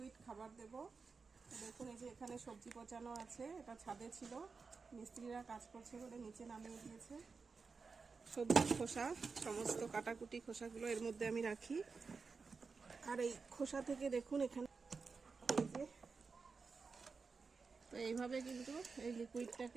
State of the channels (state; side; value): quieter; left; 4.7 dB